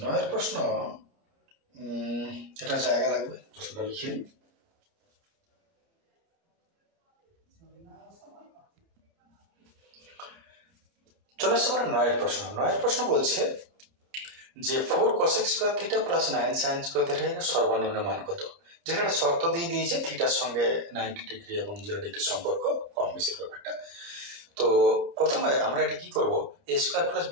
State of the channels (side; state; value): left; late; 30 ms